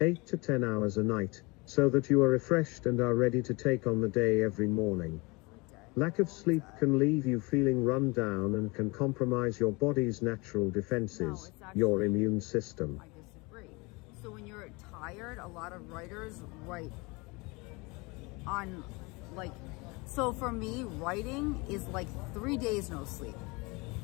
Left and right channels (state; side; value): quieter; right; 26.3 dB